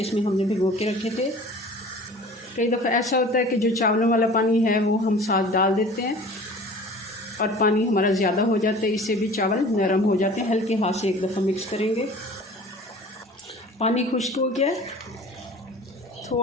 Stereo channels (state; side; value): normal; both; correlation 0.44